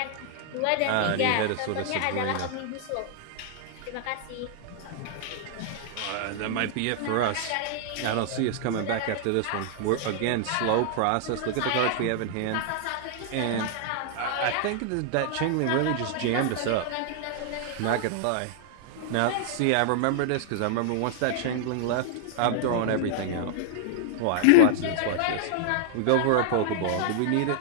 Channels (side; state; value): both; different; correlation -0.01